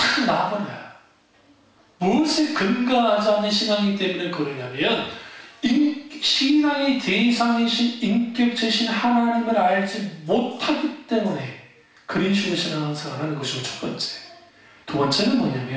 나와버려요. 무엇에 근거하지 않는 신앙이기 때문에 그러냐면 신앙의 대상이신 인격체신 하나님을 알지 못하기 때문에 그런 식으로 신앙생활하는 것이고 첫 번째. 두 번째는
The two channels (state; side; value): identical; both; correlation 1.00